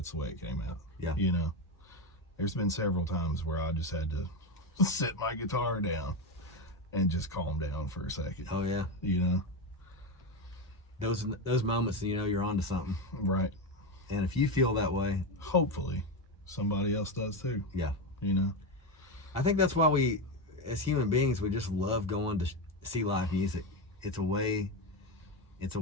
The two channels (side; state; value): both; normal; correlation 0.14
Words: the way it came out. Yeah. There's been several times where I just had to set my guitar down and just calm down for a second. oh yeah, those moments, you're onto something. Right. And if you feel that way, Hopefully somebody else does too. yeah, I I think that's why we, as human beings, we just love going to see live music. It's a way